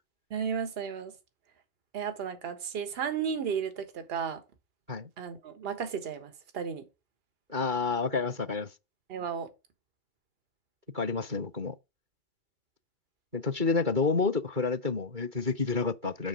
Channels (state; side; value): late; left; 2.8 ms